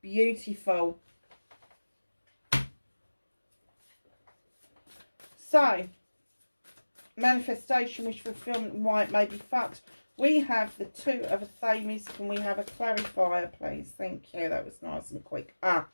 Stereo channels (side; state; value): both; inverted; correlation -1.00